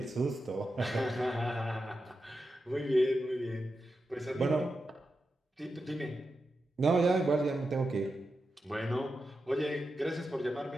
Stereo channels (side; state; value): both; normal; correlation 0.89